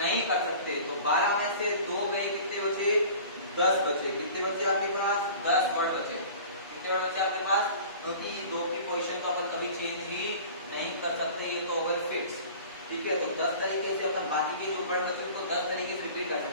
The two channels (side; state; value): both; inverted; correlation -0.42